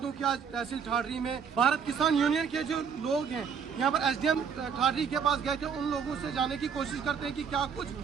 कि आज तहसील ठाठरी में भारत किसान यूनियन के जो लोग हैं यहाँ पर एसडीएम ठाठरी के पास गए थे। उन लोगों से जाने की कोशिश करते हैं कि क्या कुछ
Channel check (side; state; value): left; quieter; 6.6 dB